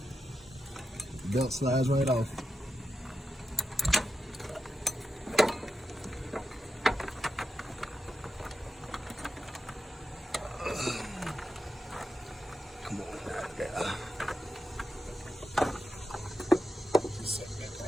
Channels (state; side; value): normal; both; correlation 0.88